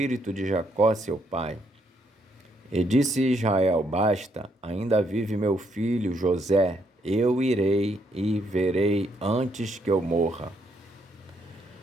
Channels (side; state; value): both; normal; correlation 0.74